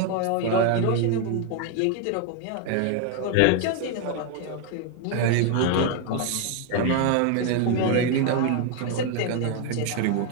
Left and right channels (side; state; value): both; different; correlation 0.01